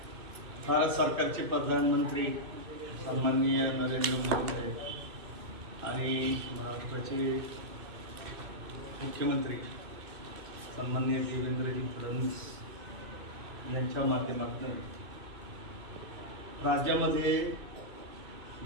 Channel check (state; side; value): late; left; 2.6 ms